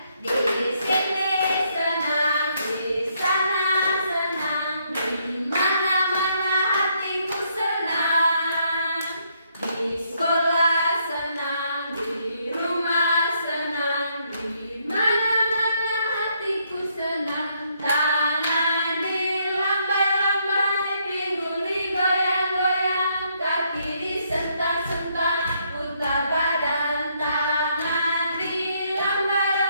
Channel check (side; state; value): both; inverted; correlation -0.73